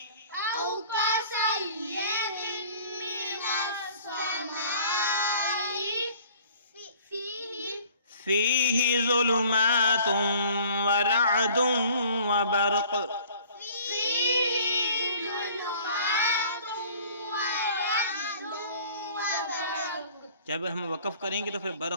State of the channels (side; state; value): both; inverted; correlation -0.51